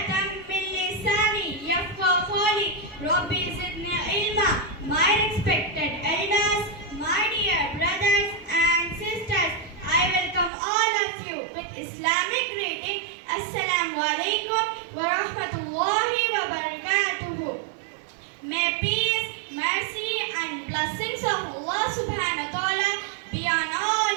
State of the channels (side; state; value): left; drops out; at 10.5 s